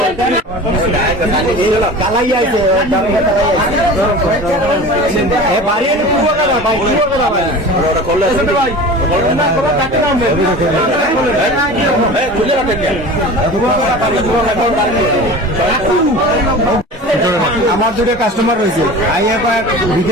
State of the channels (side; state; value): both; normal; correlation 0.36